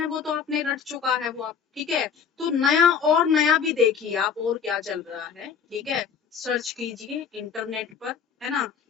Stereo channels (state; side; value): quieter; right; 6.9 dB